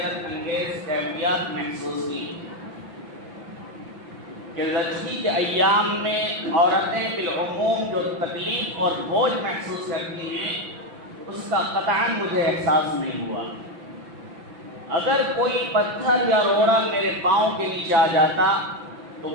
انگیز کیفیات محسوس کی کہ زچگی کے ایام میں عورتیں بالعموم جو تکلیف اور بوجھ محسوس کرتی ہیں، اس کا قطعاً مجھے احساس نہیں ہوا۔ اگر کوئی پتھر یا روڑا میرے پاؤں کے نیچے آ جاتا تو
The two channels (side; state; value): left; late; 5.9 ms